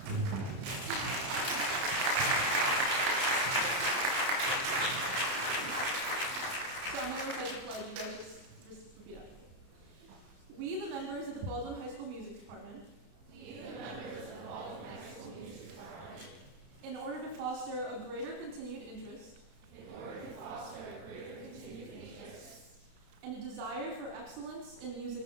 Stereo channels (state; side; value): late; left; 31 ms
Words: So I'm going to recite the pledge. You guys just repeat after me. We, the members of the Baldwin High School Music Department, in order to foster a greater continued interest, and a desire for excellence in